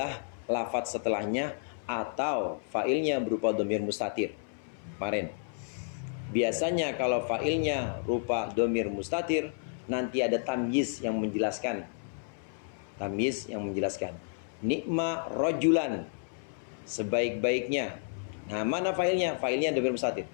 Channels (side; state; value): right; silent; 57 dB below the other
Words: lafadz setelahnya atau fa'ilnya berupa dhamir mustatir. Kemarin. Biasanya kalau fa'ilnya rupa dhamir mustatir, nanti ada tamyiz yang menjelaskan. Tamyiz yang menjelaskan. Ni'ma rajulan, sebaik-baiknya. Nah, mana fa'ilnya? Fa'ilnya dhamir mustatir.